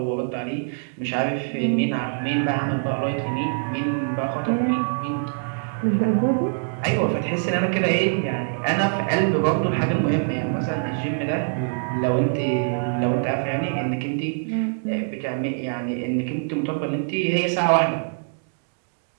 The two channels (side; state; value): left; silent; digital silence